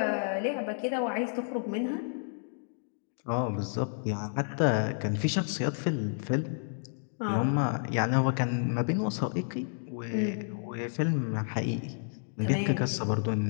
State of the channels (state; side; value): silent; right; digital silence